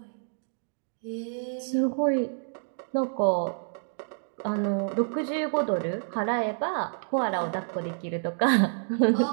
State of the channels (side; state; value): left; silent; digital silence